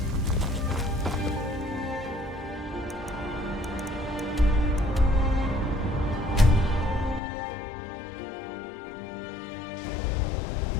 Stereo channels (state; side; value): drops out; right; at 7.2 s